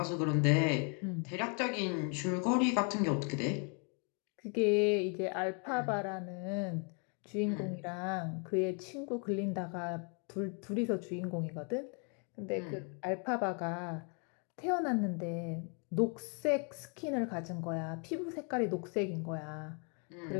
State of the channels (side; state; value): right; quieter; 38.1 dB